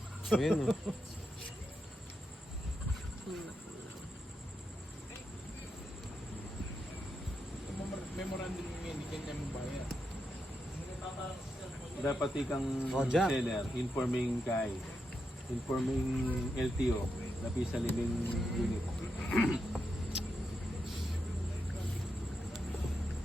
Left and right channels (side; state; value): both; normal; correlation 0.85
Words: Ayan, no? Memorandum yung hindi kanya mo bayar. Dapat ikang Oh, Jack. seller, informing kay, informing LTO, lapi sa living unit.